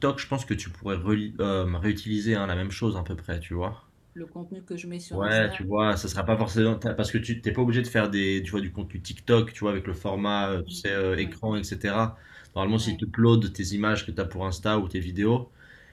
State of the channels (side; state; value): both; identical; correlation 1.00